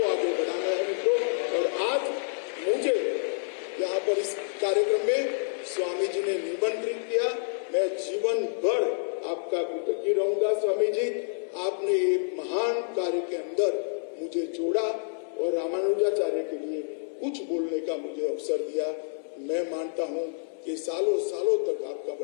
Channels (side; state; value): right; silent; digital silence